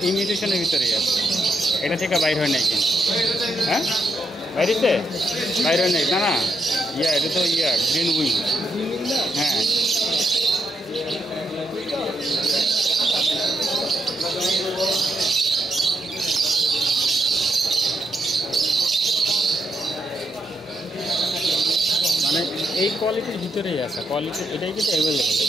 ইমিউনিশনের ভিতরেই আছে, এটা থেকে বাইর হয় নাই কিন্তু। হ্যাঁ, বাইরেতে বাইর হয় নাই, না না, এটা তো গ্রিন উইং। হ্যাঁ, মানে এই কোয়ালিটির ভিতরেই আছে, কোয়ালিটি এটাই কিন্তু অ্যাভেলেবল,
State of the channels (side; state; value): both; normal; correlation 0.80